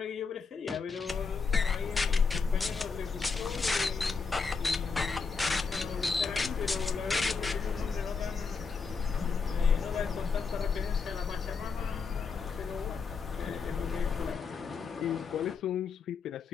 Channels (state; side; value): quieter; right; 5.1 dB